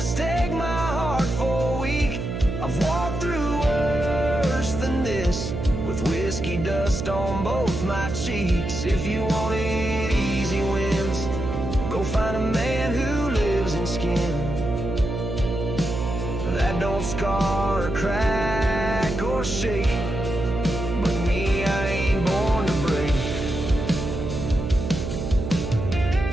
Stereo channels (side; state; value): right; noise; hum, 4 dB below the sound